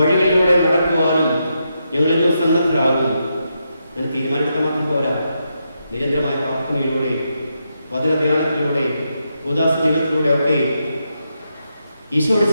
നടക്കുവാനും ഞങ്ങൾ ഇന്ന് സന്നദ്ധരാകും. അങ്ങനെ തീരുമാനമെടുക്കാൻ മാത്രം പോരാ, നിരന്തരമായ പ്രാർത്ഥനയിലൂടെ, വചനധ്യാനത്തിലൂടെ, ഉദാസ ജീവിതത്തിലൂടെ ഒക്കെ ഈശോയോട്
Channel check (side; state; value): both; inverted; correlation -0.83